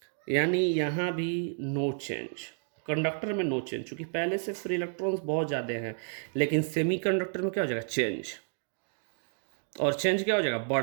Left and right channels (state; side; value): silent; left; 57 dB below the other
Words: यानी यहाँ भी नो चेंज। कंडक्टर में नो चेंज, चूंकि पहले से फ्री इलेक्ट्रॉन्स बहुत ज़्यादा हैं। लेकिन सेमी कंडक्टर में क्या हो जाएगा, चेंज, और चेंज क्या हो जाएगा,